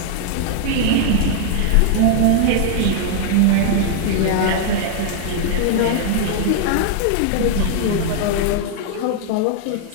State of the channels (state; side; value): different; both; correlation 0.00